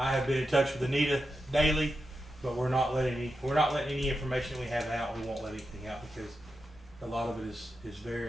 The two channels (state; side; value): normal; both; correlation 0.88